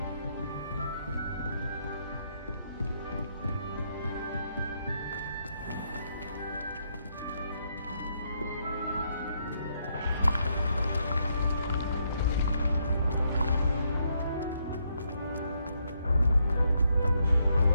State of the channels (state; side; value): inverted; both; correlation -0.76